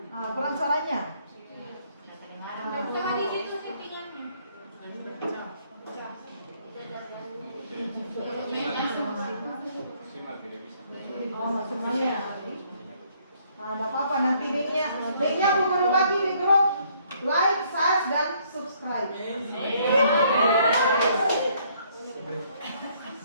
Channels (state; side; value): inverted; both; correlation -0.66